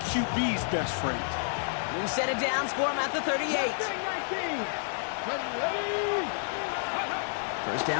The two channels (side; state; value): right; silent; 57 dB below the other